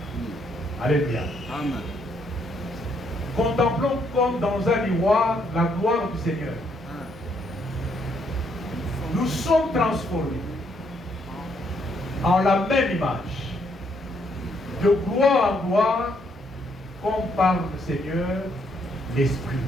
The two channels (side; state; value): both; normal; correlation 0.72